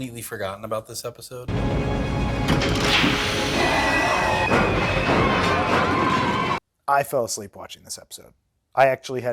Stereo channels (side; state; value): both; identical; correlation 1.00